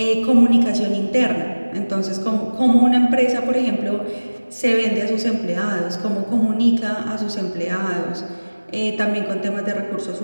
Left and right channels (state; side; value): inverted; both; correlation -1.00